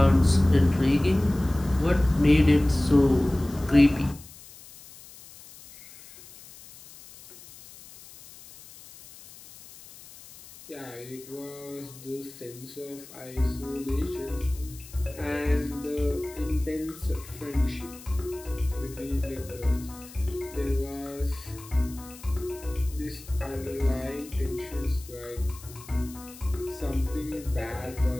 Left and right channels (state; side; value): noise; left; hiss, 19 dB below the sound